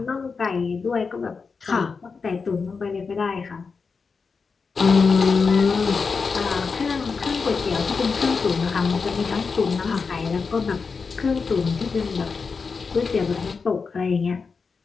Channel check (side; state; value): right; quieter; 5.0 dB